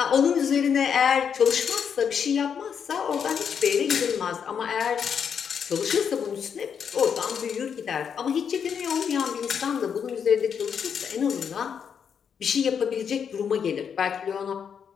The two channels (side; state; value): right; quieter; 7.3 dB